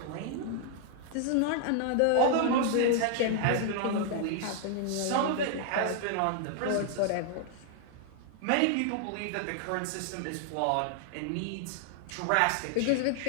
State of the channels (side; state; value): both; different; correlation 0.00